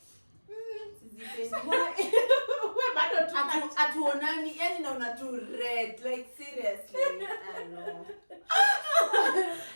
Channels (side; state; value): both; inverted; correlation -1.00